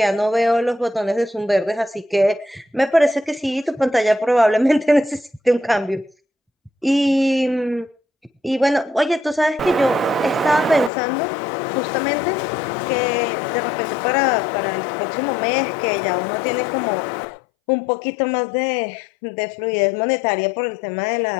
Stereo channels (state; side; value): drops out; right; at 10.9 s